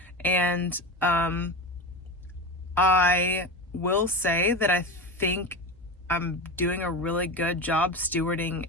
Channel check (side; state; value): both; normal; correlation 0.24